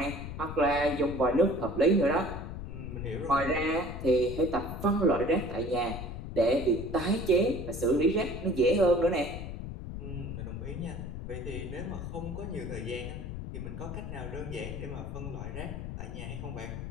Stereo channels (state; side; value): noise; left; rumble, 7 dB below the sound